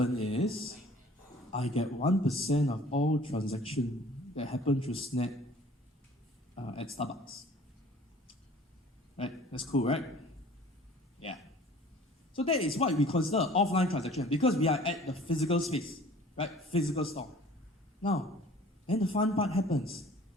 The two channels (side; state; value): both; normal; correlation 0.49